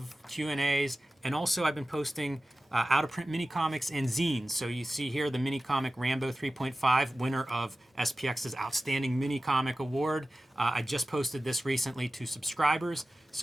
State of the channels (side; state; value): both; normal; correlation 0.95